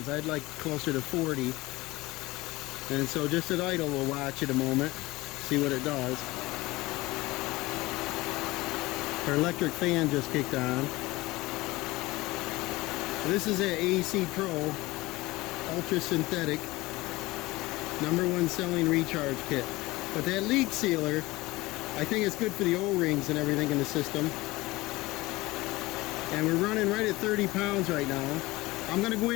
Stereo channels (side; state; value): right; quieter; 20.2 dB